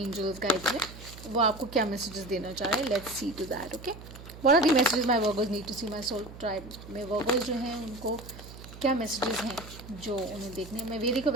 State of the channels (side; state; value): right; noise; hum, 15 dB below the sound